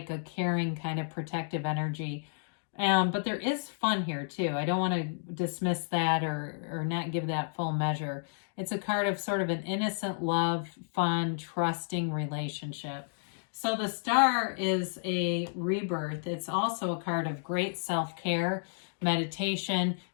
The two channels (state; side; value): silent; right; digital silence